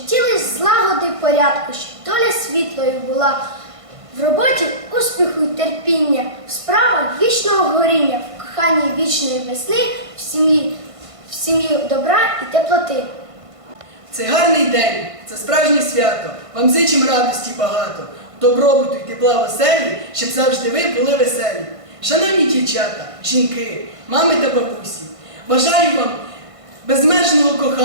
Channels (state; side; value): late; left; 1.5 ms